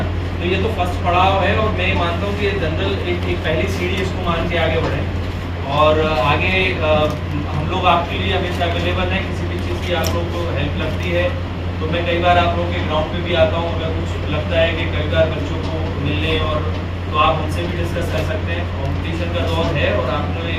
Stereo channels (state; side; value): identical; both; correlation 1.00